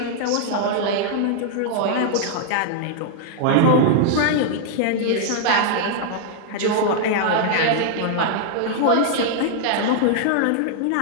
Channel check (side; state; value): both; different; correlation -0.01